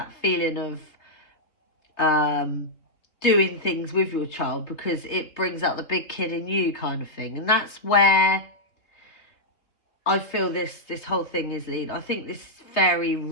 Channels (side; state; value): right; late; 3.4 ms